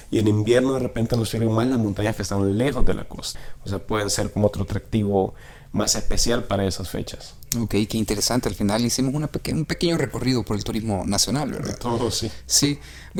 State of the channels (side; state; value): both; identical; correlation 1.00